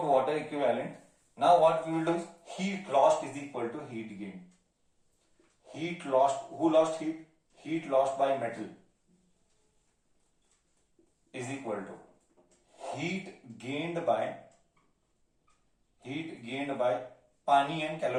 water equivalent. Now what we will do is heat lost is equal to heat gain. Heat lost, who lost heat? Heat lost by metal is equal to heat gained by पानी and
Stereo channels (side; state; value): both; identical; correlation 1.00